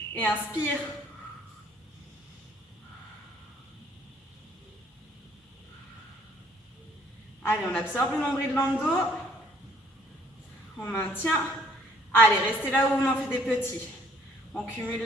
et inspire. Allez, on absorbe le nombril dans le dos. On maintient. Allez, restez là où on en fait des petits. On cumule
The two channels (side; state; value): both; normal; correlation 0.62